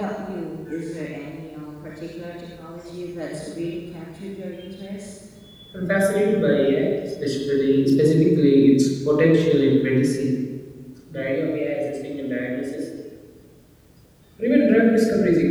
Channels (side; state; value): both; identical; correlation 1.00